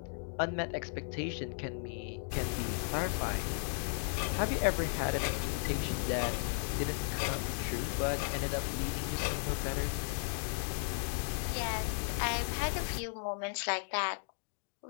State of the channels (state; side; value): silent; right; digital silence